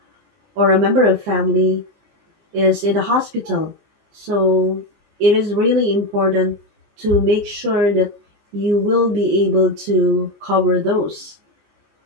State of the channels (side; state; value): left; late; 19 ms